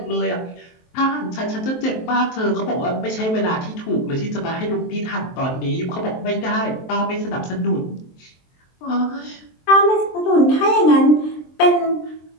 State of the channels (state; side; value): late; right; 23 ms